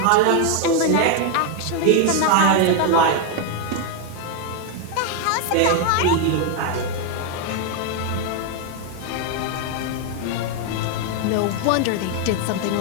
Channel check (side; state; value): both; different; correlation 0.01